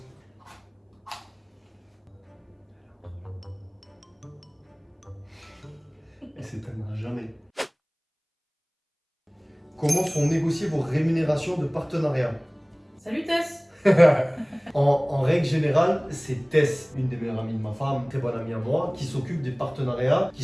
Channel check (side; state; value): both; identical; correlation 1.00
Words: s'éteindra jamais. Comment sont négociées vos rémunérations de partenariat? Salut Tess. En règle générale, c'est Tess, une des meilleures amies de ma femme, très bonne amie à moi, qui s'occupe des partenariats qui